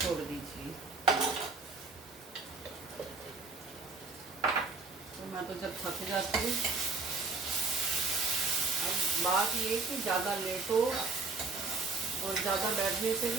छोड़ दीजिए। तो मैं तो जब थक जाती हूँ, अब बात ये कि ज़्यादा लेटो और ज़्यादा बैठने से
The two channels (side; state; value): left; quieter; 4.0 dB